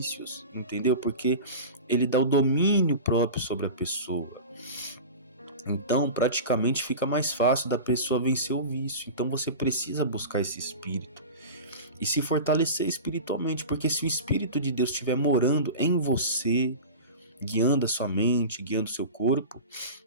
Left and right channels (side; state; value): both; inverted; correlation -0.30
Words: entendeu? Porque ele dá o domínio próprio sobre a pessoa. Então, praticamente fica mais fácil da pessoa vencer o vício. Então, você precisa buscar esse Espírito e se fortalecer espiritualmente, porque se o Espírito de Deus estiver morando em você, guiando a sua mente, guiando o seu corpo,